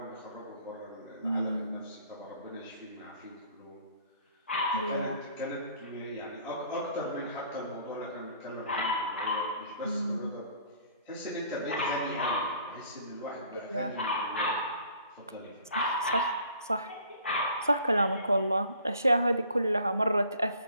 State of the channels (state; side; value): inverted; both; correlation -0.55